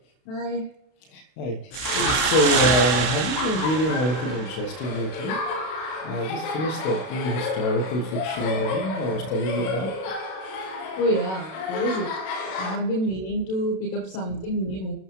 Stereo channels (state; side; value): late; right; 32 ms